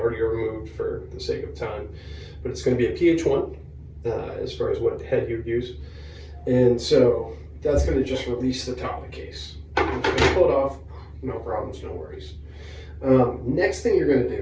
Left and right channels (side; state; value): both; identical; correlation 1.00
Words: removed for the sake of time. But it's going to be a PH1 as far as what head you'd use. And so that's going to just release the top of the case. I'm just going to pull it off, no problems, no worries. Next thing you're going to